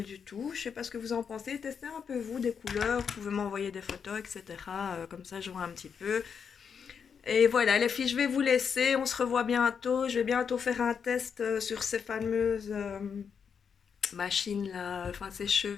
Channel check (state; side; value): quieter; right; 6.7 dB